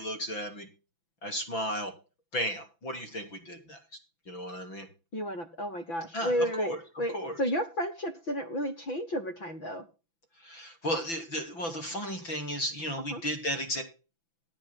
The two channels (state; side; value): late; right; 6.0 ms